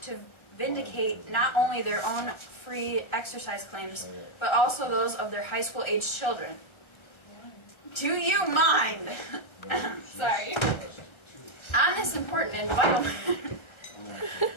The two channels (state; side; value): late; right; 1.3 ms